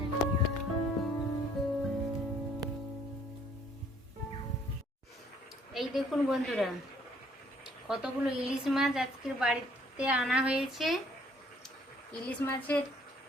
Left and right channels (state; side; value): normal; both; correlation 0.61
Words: এই দেখুন বন্ধুরা কতগুলো ইলিশ মাছ আজকের বাড়িতে আনা হয়েছে। ইলিশ মাছের